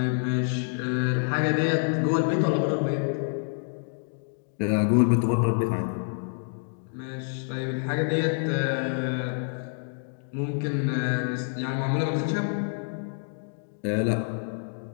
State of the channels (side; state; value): right; silent; digital silence